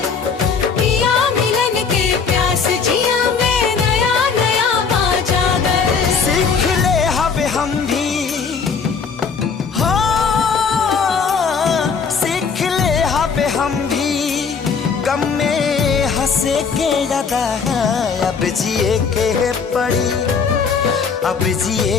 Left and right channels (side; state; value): right; quieter; 5.7 dB